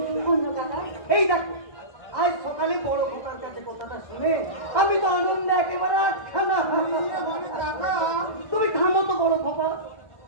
অন্য কথা এই দেখো, আজ সকালে বড় খোকার কাছে কথাটা শুনে আমি তো আনন্দে একেবারে আটখানা। তুমি থামো তো বড় খোকা,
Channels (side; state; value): right; late; 1.2 ms